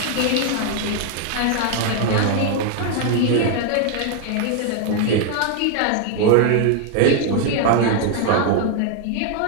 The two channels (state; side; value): different; both; correlation 0.00